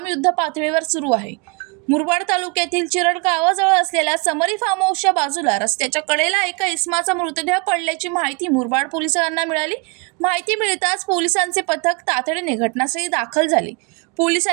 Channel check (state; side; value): quieter; left; 31.0 dB